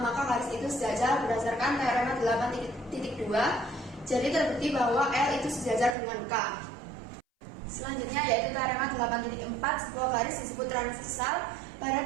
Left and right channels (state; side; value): drops out; left; at 6.0 s